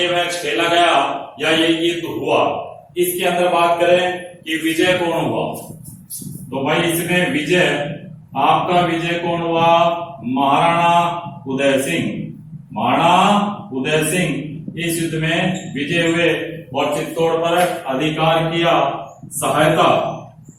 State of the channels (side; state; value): both; identical; correlation 1.00